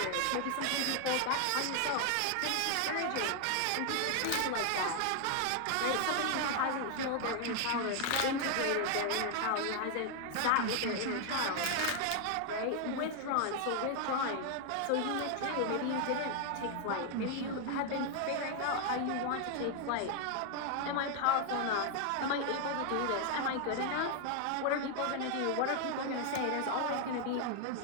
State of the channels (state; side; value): different; both; correlation 0.00